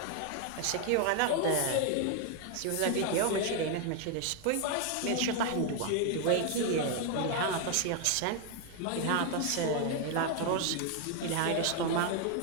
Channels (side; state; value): both; different; correlation 0.01